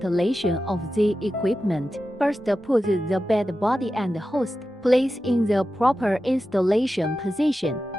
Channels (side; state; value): both; normal; correlation 0.92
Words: of the equipment. First, put the bed body and host. Place in the proper installation position.